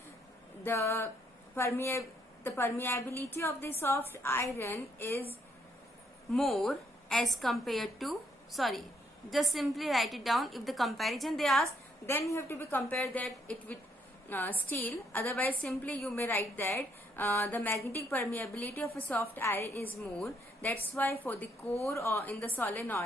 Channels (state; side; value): normal; both; correlation 0.72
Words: the permeability of the soft iron is more as compared to, just simply write it down. If the comparison they ask, then you have to be compare that it with steel. Otherwise simply you may write that the magnetic permeability of a soft iron is more. That's why for the core or in the